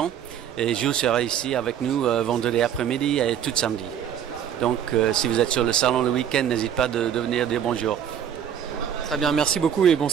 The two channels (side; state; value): left; quieter; 9.2 dB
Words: Et Jules sera ici avec nous vendredi après-midi et tout samedi. Donc, si vous êtes sur le salon le week-end, n'hésitez pas de venir dire bonjour. Très bien, merci beaucoup et bon